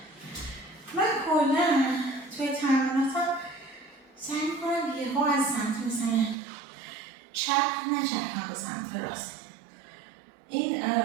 من کلا توی تمریناتم سعی میکنم یهو از سمت مثلا چپ نچرخم به سمت راست این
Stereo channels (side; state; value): left; drops out; at 6.4 s